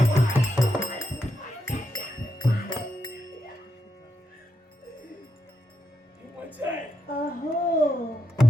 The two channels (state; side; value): normal; both; correlation 0.83